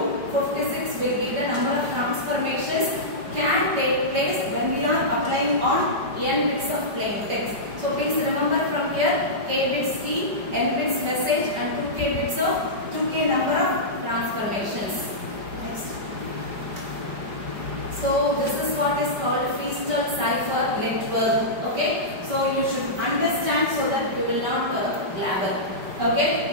56 will be the number of transformations can take place when we are applying on n bits of plain text. So please remember from here, k bits key, n bits message, and 2k bits of 2k number of transformations. Next. So this is what is called Feastel cipher network. Okay. So you should understand so that you will not blabber.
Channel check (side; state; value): left; late; 5.2 ms